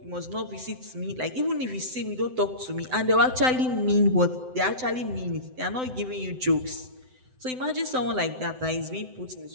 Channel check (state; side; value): late; left; 7.8 ms